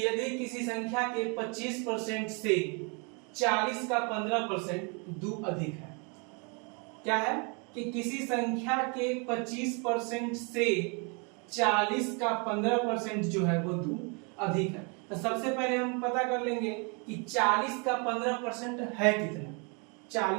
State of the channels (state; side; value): quieter; left; 34.1 dB